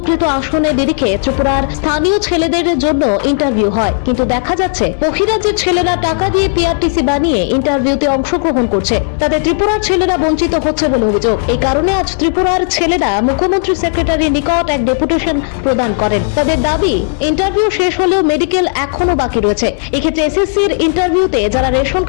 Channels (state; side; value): silent; right; digital silence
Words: আসনের নিরিখে ত্রিপুরার স্থানীয় ছেলেদের জন্য ইন্টারভিউ হয়, কিন্তু দেখা যাচ্ছে বহিরাজ্যের ছেলেরা টাকা দিয়ে পিআরটিসি বানিয়ে ইন্টারভিউতে অংশগ্রহণ করছে। তাতে ত্রিপুরার ছেলেরা বঞ্চিত হচ্ছে বলে অভিযোগ। এই কারণে আজ ত্রিপুরার ছেলেরা মুখ্যমন্ত্রী সেক্রেটারির নিকট এক ডেপুটেশন প্রদান করেন। তাদের দাবি, ইন্টারভিউ শেষ হলেও মেডিকেল এখনো বাকি রয়েছে। এক্ষেত্রে এসএসসির ইন্টারভিউতে যারা রেশন